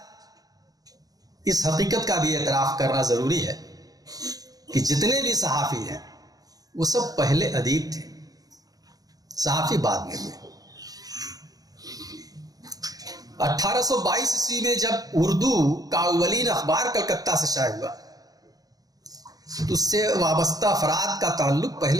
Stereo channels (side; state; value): left; late; 0.18 ms